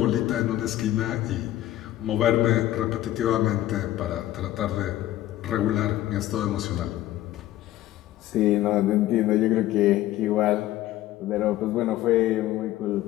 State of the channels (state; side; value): quieter; right; 14.6 dB